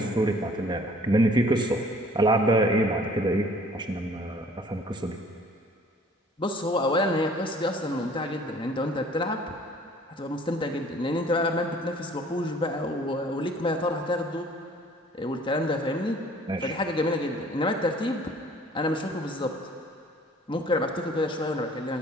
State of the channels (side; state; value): both; normal; correlation 0.54